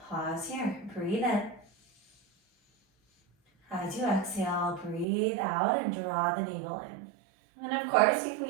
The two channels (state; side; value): drops out; left; at 5.1 s